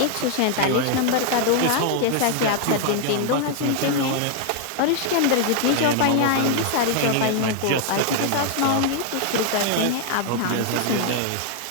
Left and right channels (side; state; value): both; different; correlation 0.00